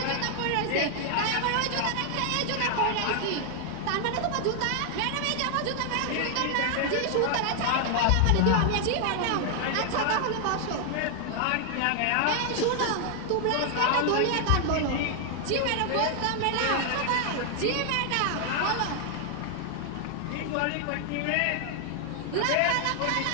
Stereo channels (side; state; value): both; different; correlation 0.00